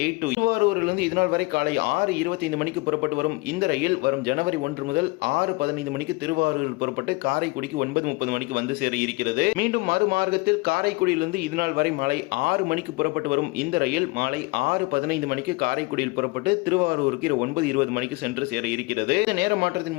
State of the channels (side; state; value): right; quieter; 24.7 dB